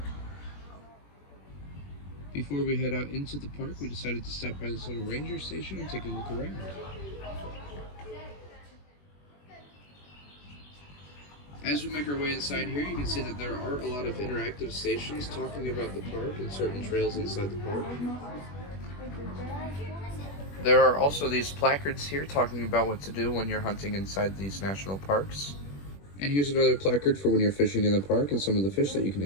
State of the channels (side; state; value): right; late; 21 ms